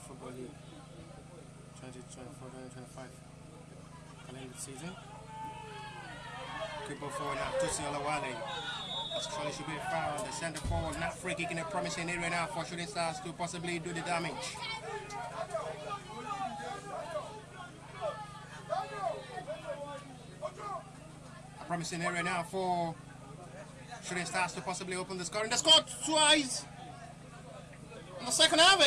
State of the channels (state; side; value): identical; both; correlation 1.00